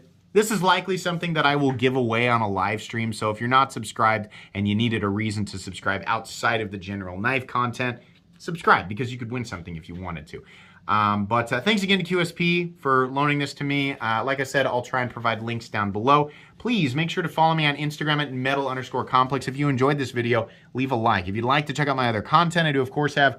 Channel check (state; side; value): identical; both; correlation 1.00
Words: This is likely something that I will give away on a live stream, so if you're not subscribed and you needed a reason to subscribe outside of the general knife content, subscribe because you could win something if you wanted to. But thanks again to QSP for loaning this to me. Like I said, I'll try and provide links down below. Please make sure to follow me on Instagram at metal_complex. If you enjoyed this video, leave a like. If you'd like to check out my other content, I do of course have